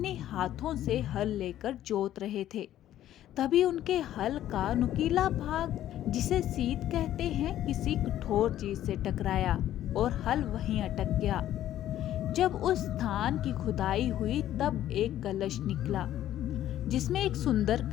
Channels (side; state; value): right; quieter; 12.4 dB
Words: हाथों से हल लेकर जोत रहे थे। तभी उनके हल का नुकीला भाग, जिसे सीत कहते हैं, किसी कठोर चीज से टकराया और हल वहीं अटक गया। जब उस स्थान की खुदाई हुई तब एक कलश निकला, जिसमें एक सुंदर